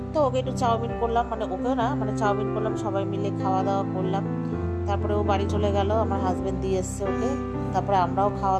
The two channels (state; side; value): identical; both; correlation 1.00